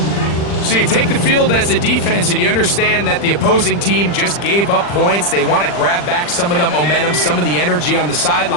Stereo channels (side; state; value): right; late; 40 ms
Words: So you take the field as a defense, and you understand that the opposing team just gave up points. They want to grab back some of the momentum, some of the energy on the